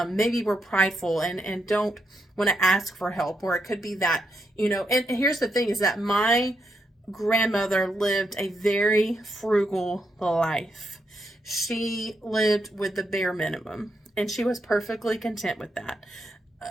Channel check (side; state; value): both; normal; correlation 0.81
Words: maybe we're prideful and don't want to ask for help, or it could be that, and here's the thing is that my grandmother lived a very frugal life. She lived with the bare minimum and she was perfectly content with that.